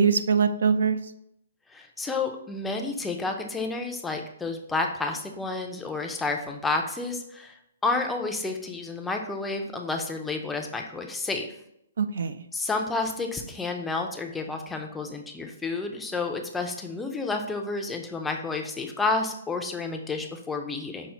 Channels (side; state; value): both; normal; correlation 0.01